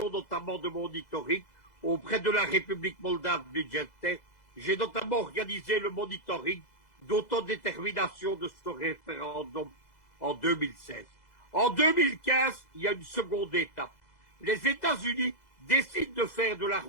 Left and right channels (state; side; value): late; right; 2.0 ms